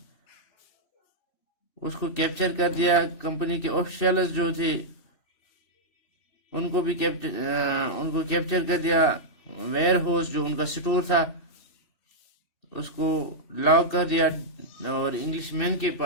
اس کو کیپچر کر دیا. کمپنی کے آفیشلز جو تھے ان کو کیپچر کر دیا. ویئر ہاؤس جو ان کا سٹور تھا اس کو لاک کر دیا، اور انگلش مین کے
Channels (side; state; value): right; late; 2.6 ms